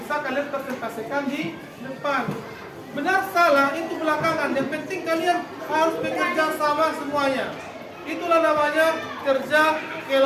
kalian presentasikan di depan. Benar salah itu belakangan. Yang penting kalian harus bekerja sama semuanya. Itulah namanya kerja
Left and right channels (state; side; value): identical; both; correlation 1.00